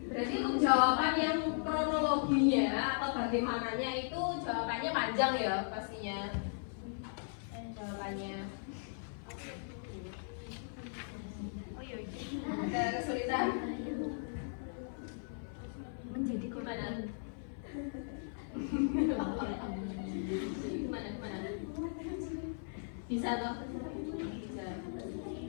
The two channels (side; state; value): right; silent; 53 dB below the other